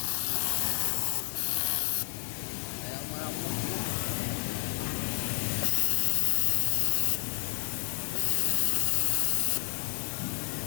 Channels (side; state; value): right; silent; 58 dB below the other